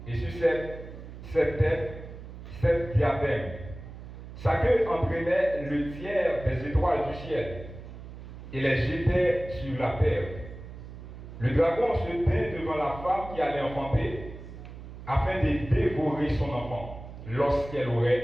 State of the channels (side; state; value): right; noise; hum, 13 dB below the sound